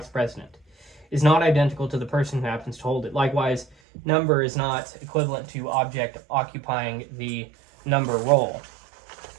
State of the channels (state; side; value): drops out; left; at 3.8 s